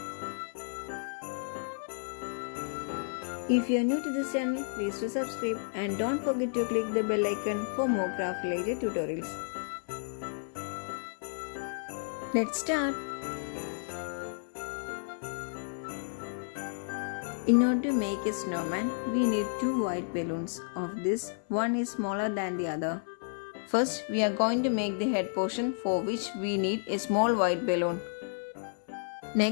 If you are new to this channel, please do subscribe and don't forget to click the bell icon for more craft related tutorials. Let's start. In order to make a snowman, we need two white balloons. Of this, one is smaller than the other. First, we are going to make the head portion, for which we need a small white balloon.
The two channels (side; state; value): right; silent; 57 dB below the other